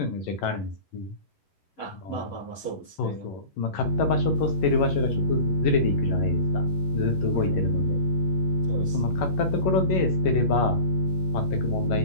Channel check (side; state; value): right; late; 11 ms